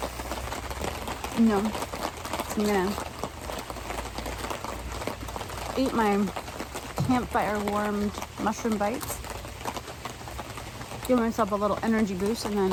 no, I'm gonna eat my campfire warmed mushroom bites, give myself a little energy boost, and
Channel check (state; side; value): identical; both; correlation 1.00